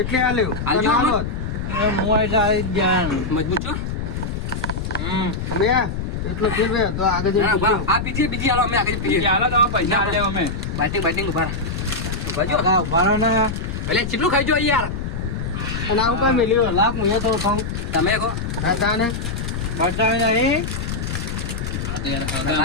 આલ્યું આલ્યું અને આમાં? આલો જ. હું એટલે આવી જ ગયા મજબૂત છો અમે એટલો ફેર બે તો આગળ જઈને ના, પીજો. બરાબર. આ પીજીએ બીજી હાલો અમે આગળ પીએ હાલો તમે પૈસા આલે અમે બાઇટિંગ ઉભા રહો. ઉભા જો હગા ઉભા રહો ને એટલે કેટલું ખાઈ જો યાર અને આવું કાંઈ મેલ્યું લાખ હું એ થોડું ખાઉં તમે કહો હા તાને બતાવી નહીં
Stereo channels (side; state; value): left; noise; rumble, 4 dB below the sound